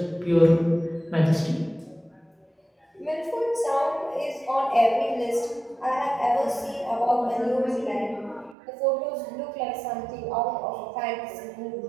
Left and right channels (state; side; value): drops out; left; at 8.6 s